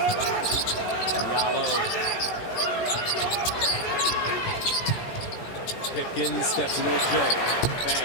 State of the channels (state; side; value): late; right; 17 ms